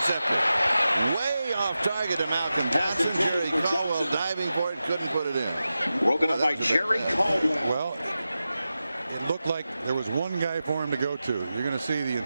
intercepted. Way off target to Malcolm Johnson. Jerry Caldwell diving for it, couldn't put it in. Broken up by Jerry Caldwell. Well, it looked like there was one guy for him to go to. You're going to see the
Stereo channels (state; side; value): inverted; both; correlation -0.93